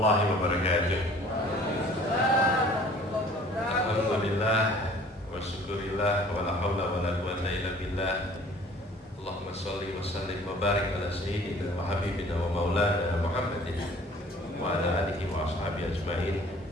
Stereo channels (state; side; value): normal; both; correlation 0.51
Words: wabarakatuh. Alhamdulillah wa syukurillah wa la hawla wa la quwwata illa billah. Allahumma shalli wa sallim wa barik ala sayyidina wa habibina wa maulana Muhammadin wa ala alihi wa ashabihi ajma'in.